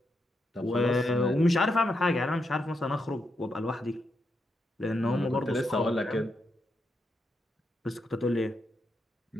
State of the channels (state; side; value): normal; both; correlation 0.82